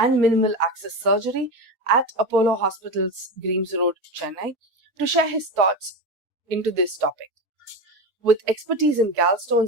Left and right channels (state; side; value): normal; both; correlation 0.21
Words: Minimal Access Surgery at Apollo Hospital's Greams Road, Chennai, to share his thoughts into this topic. With expertise in